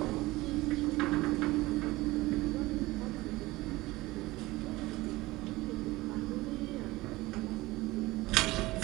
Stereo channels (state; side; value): quieter; left; 19.7 dB